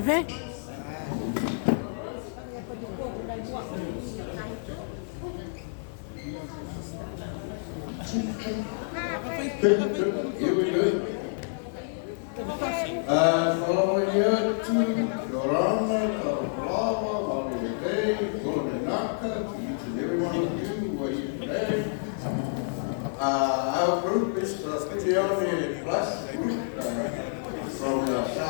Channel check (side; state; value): right; silent; digital silence